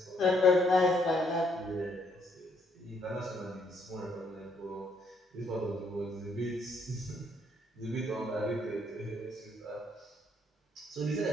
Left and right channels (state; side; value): normal; both; correlation 0.70